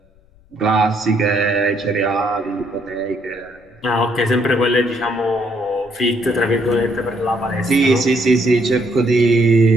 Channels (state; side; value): noise; left; rumble, 30 dB below the sound